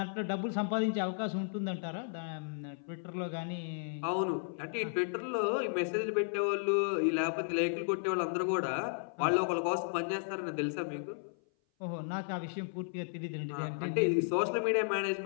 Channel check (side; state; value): right; silent; 55 dB below the other